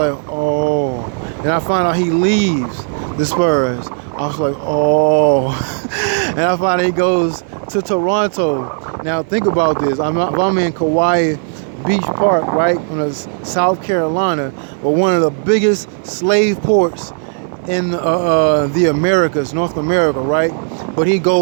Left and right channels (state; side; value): silent; left; 68 dB below the other